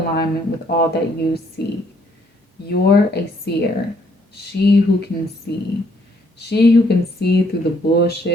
with all that you see. You're a seer, she who can see. She who can see through the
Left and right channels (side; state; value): both; normal; correlation 0.67